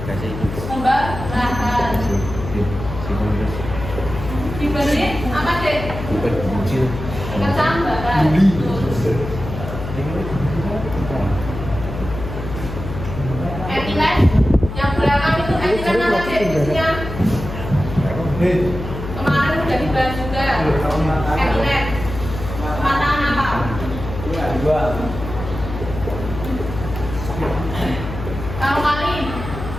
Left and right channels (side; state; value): left; noise; hum, 8 dB below the sound